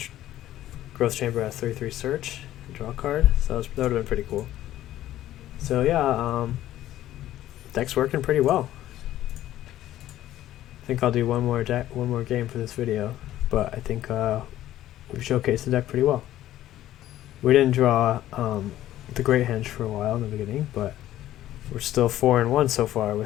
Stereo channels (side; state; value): right; quieter; 13.5 dB